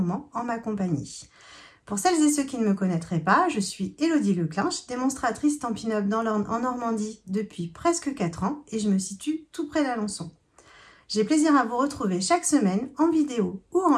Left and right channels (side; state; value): both; identical; correlation 1.00